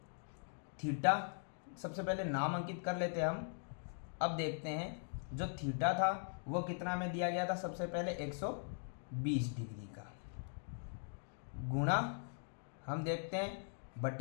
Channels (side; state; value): right; silent; digital silence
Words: पहले नाम अंकित कर लेते हैं हम। अब देखते हैं जो थीटा था वो कितना में दिया गया था, सबसे पहले 120 डिग्री का, गुणा हम देखते हैं